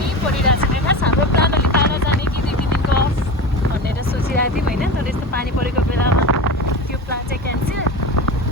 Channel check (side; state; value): both; normal; correlation 0.27